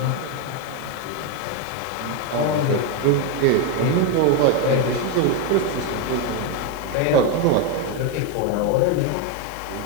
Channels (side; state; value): both; different; correlation 0.02